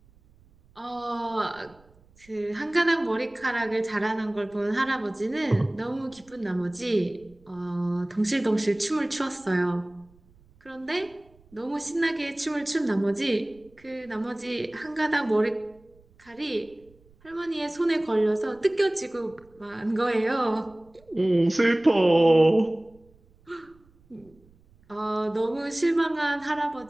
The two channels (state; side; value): noise; right; rumble, 30 dB below the sound